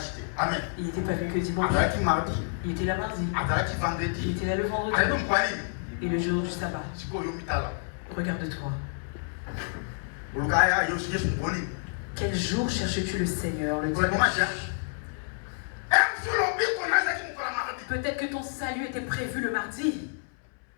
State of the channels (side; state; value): right; silent; 59 dB below the other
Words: pas vu que dimanche. Il était là mardi. Il était là le vendredi. Et le jour du sabbat. Regarde-toi. Quel jour cherches-tu le Seigneur? Le dimanche. Peut-être que ton salut était prévu le mardi.